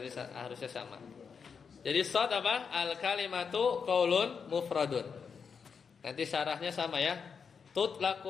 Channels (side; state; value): right; quieter; 6.1 dB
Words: harusnya sama. Jadi shad apa? Al kalimatu qaulun mufradun. Nanti syarahnya sama ya.